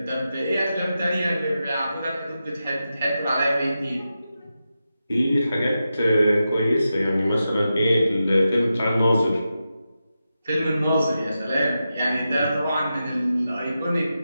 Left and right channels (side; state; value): both; inverted; correlation -0.90